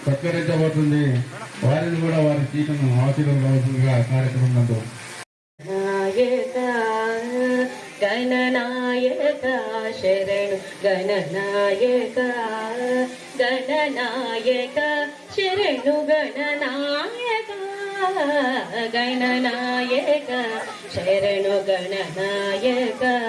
సత్కరించబోతుంది. వారిని కూడా వారి సీటును ఆశీర్వదించవలసిందిగా కార్యక్రమం నందు గణనాయక శరణు గణనాయక గణనాయక శరణు గణనాయక గణనాయక శరణు గణనాయక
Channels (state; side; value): identical; both; correlation 1.00